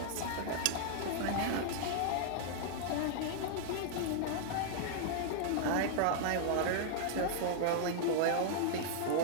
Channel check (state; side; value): different; both; correlation -0.01